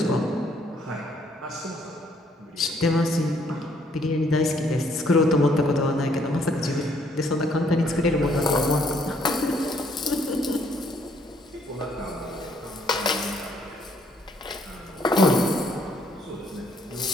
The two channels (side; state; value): both; normal; correlation 0.67